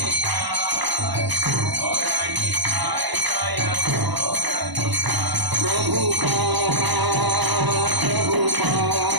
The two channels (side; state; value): left; late; 1.0 ms